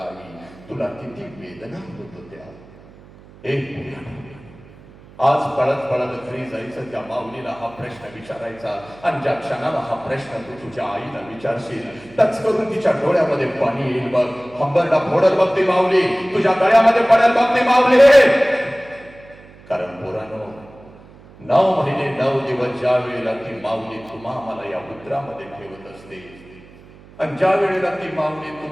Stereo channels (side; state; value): right; noise; hum, 22 dB below the sound